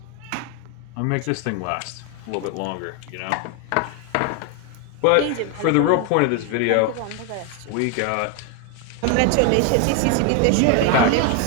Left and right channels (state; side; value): different; both; correlation 0.01